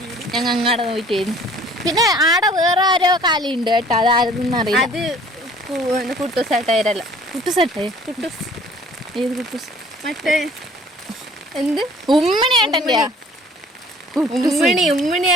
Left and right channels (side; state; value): both; normal; correlation 0.53